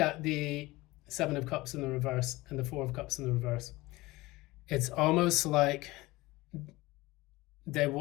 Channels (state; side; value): quieter; right; 20.3 dB